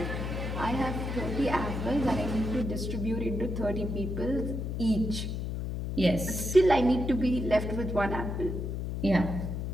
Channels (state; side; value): noise; left; hum, 3 dB below the sound